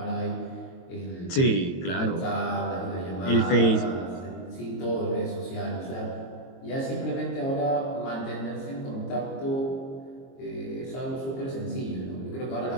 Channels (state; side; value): late; right; 22 ms